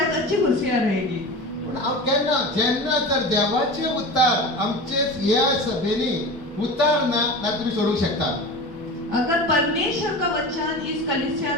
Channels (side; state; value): both; normal; correlation 0.31